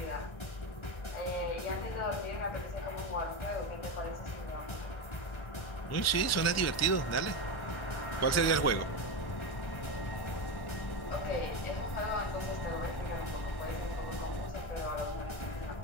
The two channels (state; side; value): late; right; 1.4 ms